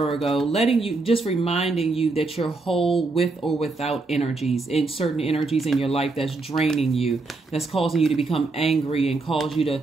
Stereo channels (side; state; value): left; quieter; 3.6 dB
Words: reminding you that you're whole with or without energies, in certain energies in your life that's draining you, that's causing you to become angry and cause you to